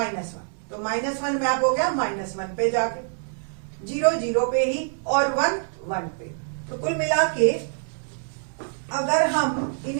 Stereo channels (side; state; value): left; silent; 61 dB below the other